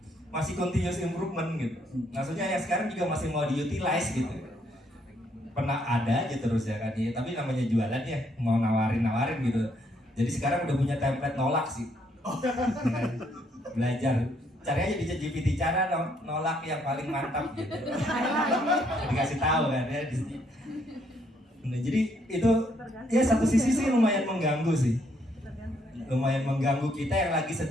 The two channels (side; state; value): both; normal; correlation 0.70